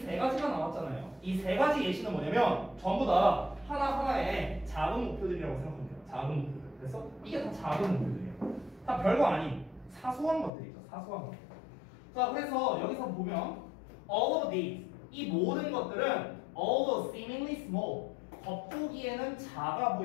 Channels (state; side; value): drops out; right; at 10.5 s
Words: 가지가 나왔잖아요. 이 세 가지 예시는 뭐냐면 전부 다 하나하나의 작은 목표들이라고 생각하면 돼요. 작은 목표들. 그래서 이게 다 작은 목표들이에요. 다 별거 아닌 사소한 것들이죠. 사소한 것들. 자, 그래서 여기서 보면 all of these, 이 모든 것들은 although seemingly small, 겉보기에는 작아